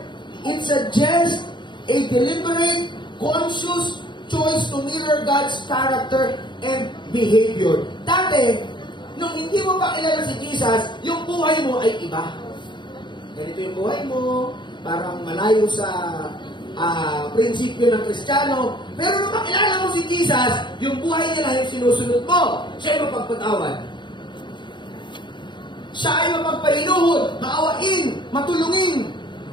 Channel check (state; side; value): late; right; 0.23 ms